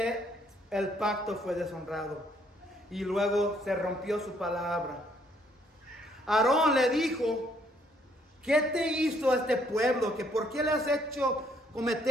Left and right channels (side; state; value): both; normal; correlation 0.67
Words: el pacto fue deshonrado. Y luego se rompió su palabra. Aarón le dijo, ¿qué te hizo este pueblo? ¿Que por qué le has hecho